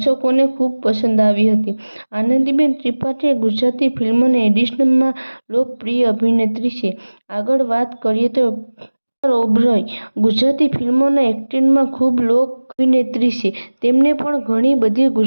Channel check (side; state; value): both; inverted; correlation -1.00